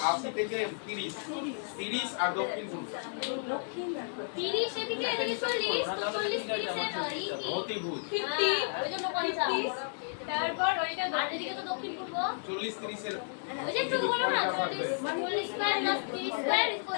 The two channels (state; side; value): silent; right; digital silence